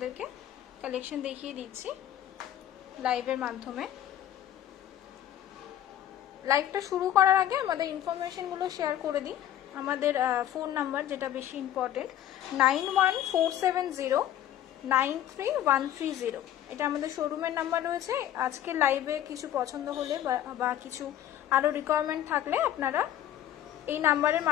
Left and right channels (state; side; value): quieter; right; 11.7 dB